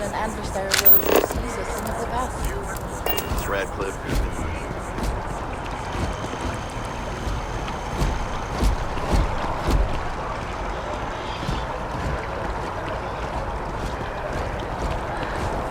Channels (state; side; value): identical; both; correlation 1.00